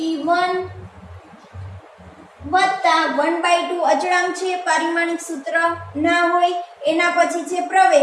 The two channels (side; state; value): both; identical; correlation 1.00